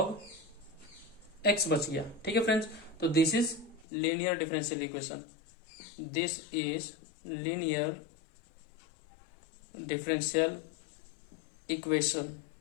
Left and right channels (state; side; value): drops out; right; at 3.9 s